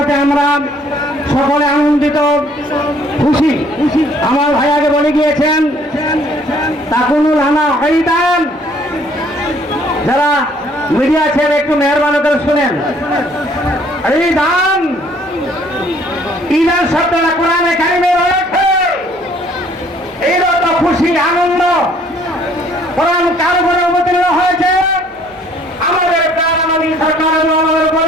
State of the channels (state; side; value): normal; both; correlation 0.60